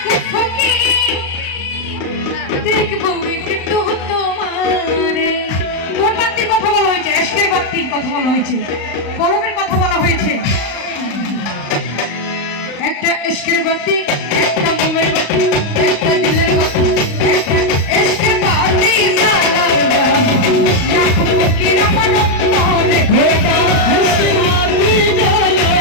ফকি, দেখবো একটু তোমারে। কোন বাতির কথা বলা হয়েছে? এশকের বাতির কথা বলা হয়েছে, কলমের কথা বলা হয়েছে। একটা এশকের বাতি, একটা মোমের বাতি, একটা দিলের বাতি, একটা এশকের বাতি জ্বালাইয়া আকুল ফকির আমার অন্তরে।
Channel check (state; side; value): late; right; 35 ms